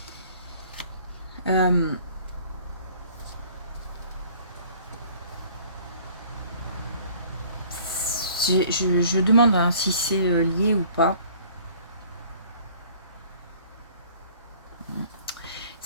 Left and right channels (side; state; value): both; inverted; correlation -0.53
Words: Euh, je demande, hein, si c'est lié ou pas.